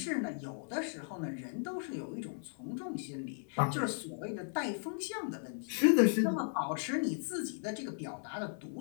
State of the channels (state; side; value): silent; right; 54 dB below the other